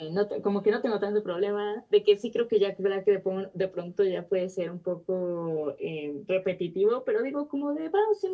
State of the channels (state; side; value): identical; both; correlation 1.00